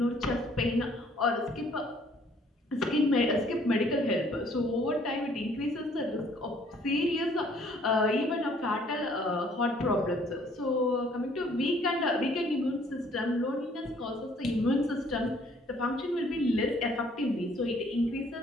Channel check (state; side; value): normal; both; correlation 0.61